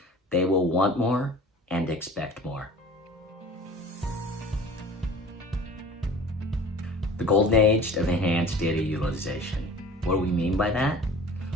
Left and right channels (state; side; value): normal; both; correlation 0.43